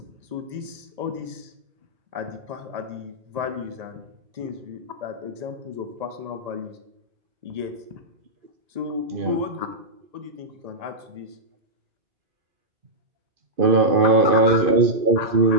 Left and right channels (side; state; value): left; late; 1.8 ms